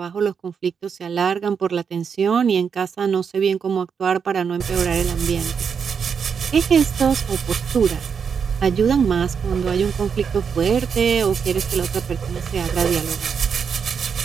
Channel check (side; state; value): left; quieter; 6.6 dB